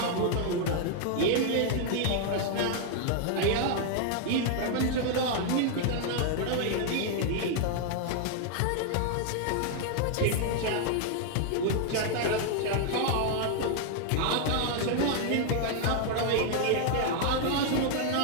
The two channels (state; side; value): different; both; correlation 0.00